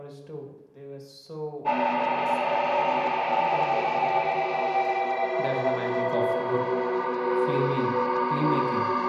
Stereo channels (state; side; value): identical; both; correlation 1.00